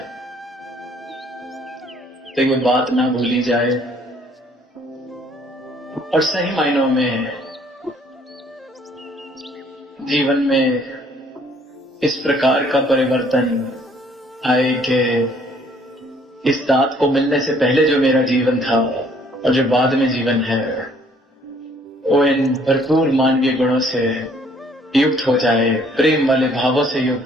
तो ये बात ना भूली जाए, और सही मायनों में जीवन में इस प्रकार का परिवर्तन आए कि इस दात को मिलने से पहले जो मेरा जीवन था और जो बाद में जीवन है, वो इन भरपूर मानवीय गुणों से युक्त हो जाए, प्रेम वाले भावों से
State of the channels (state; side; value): normal; both; correlation 0.61